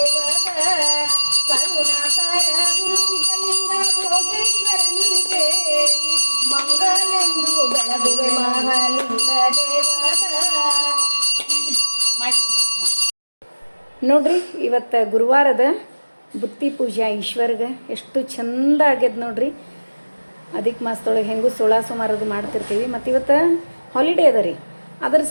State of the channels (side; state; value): both; inverted; correlation -1.00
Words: ಕರುಣಾಕರ ಗುರುಸಿದ್ಧಲಿಂಗ ಭೋಗೇಶ್ವರನಿಗೆ ಮಂಗಲೆಂದು ಬೆಳಗುವೆ ಮಹಾಲಿಂಗ ದೇವದ. ನೋಡ್ರಿ, ಇವತ್ತು ಗುರುವಾರದ ಬುತ್ತಿ ಪೂಜೆ ಈಶ್ವರ್ಗೆ ಎಷ್ಟು ಚಂದ ಆಗ್ಯದ ನೋಡ್ರಿ. ಅದಕ್ಕೆ ಮಾಸದೊಳಗೆ ಹೆಂಗೂ 16 ಸೋಮವಾರದು ಮಾಡ್ತಿರ್ತೀವಿ. ಮತ್ತು ಇವತ್ತು ಹಾಲಿಡೇ ಅದ ರೀ, ಅದರ